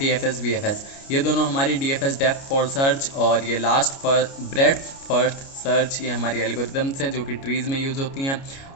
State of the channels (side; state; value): right; late; 29 ms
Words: BFS, ये दोनों हमारी DFS डेप्थ फॉर सर्च, और ये last for breadth first search, ये हमारी एल्गोरिदम्स हैं जो कि ट्रीज़ में यूज़ होती हैं,